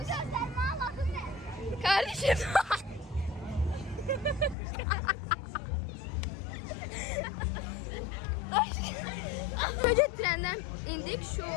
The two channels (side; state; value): right; drops out; at 4.5 s